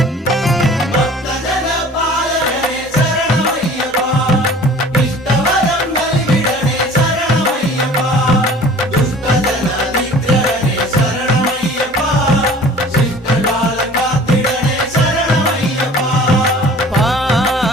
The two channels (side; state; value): both; normal; correlation 0.47